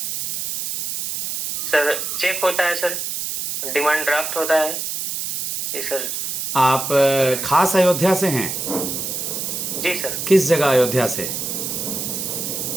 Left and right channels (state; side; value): noise; right; hiss, 3 dB below the sound